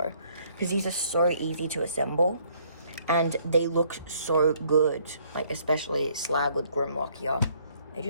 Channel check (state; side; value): inverted; both; correlation -0.64